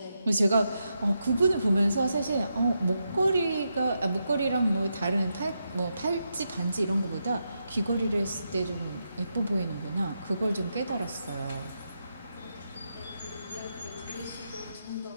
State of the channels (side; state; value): both; inverted; correlation -0.84